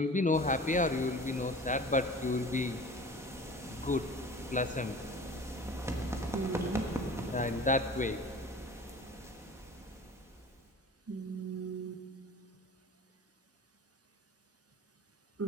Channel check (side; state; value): both; normal; correlation 0.40